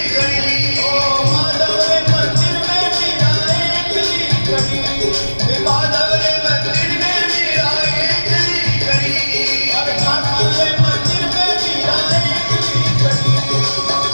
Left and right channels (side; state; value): both; inverted; correlation -1.00